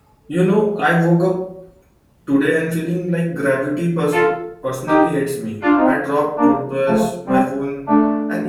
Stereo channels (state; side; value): identical; both; correlation 1.00